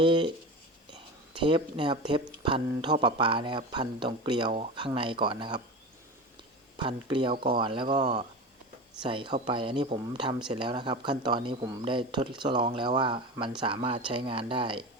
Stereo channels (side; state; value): both; normal; correlation 0.28